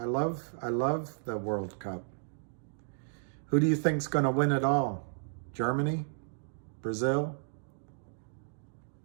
love the World Cup. Who do you think's going to win it all? Germany? Brazil?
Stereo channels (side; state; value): left; silent; digital silence